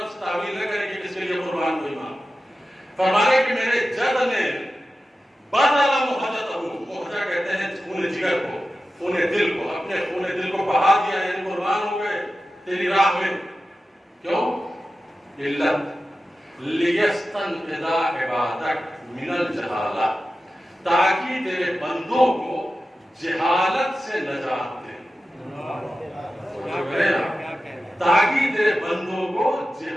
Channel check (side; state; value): both; normal; correlation 0.93